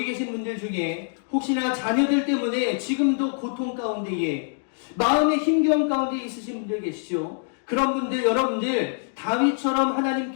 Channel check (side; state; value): right; silent; digital silence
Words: 계신 분들 중에 혹시나 자녀들 때문에 지금도 고통 가운데에 마음의 힘겨움 가운데 있으신 분들 계시죠? 그런 분들, 여러분들 다윗처럼